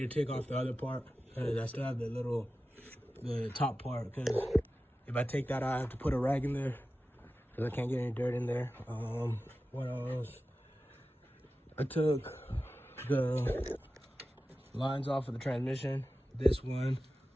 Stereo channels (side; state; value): both; normal; correlation 0.94